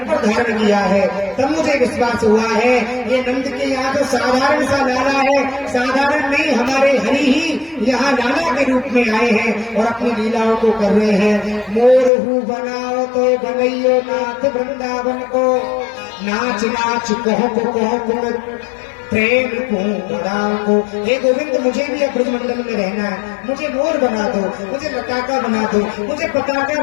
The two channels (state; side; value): drops out; right; at 12.1 s